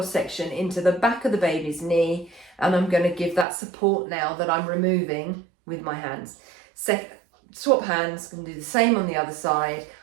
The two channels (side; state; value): left; drops out; at 3.5 s